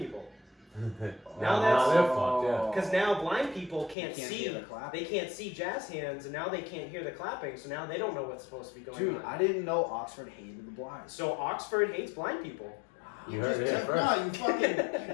Now that's- they're fucked, yeah. Because now blind people can't Can't see, hear the clapping. they can't see jazz hands, and now they can't hear the clapping, so now they don't know what's supposed to be going Dude, on. I didn't know Oxford hated the blind. So Oxford hates blind people. You heard it here No, first. you fucking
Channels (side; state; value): right; drops out; at 4.0 s